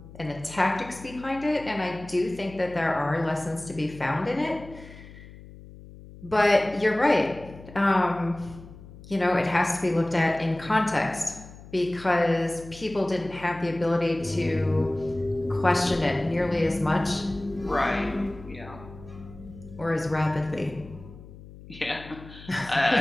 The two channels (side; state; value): left; noise; hum, 18 dB below the sound